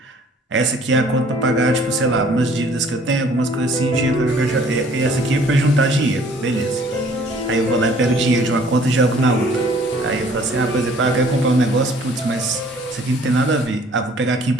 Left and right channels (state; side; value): normal; both; correlation 0.56